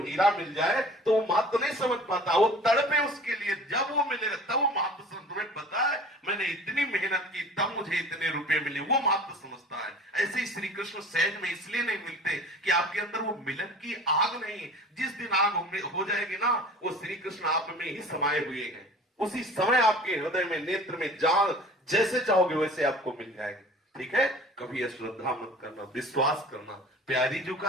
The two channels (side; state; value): both; normal; correlation 0.44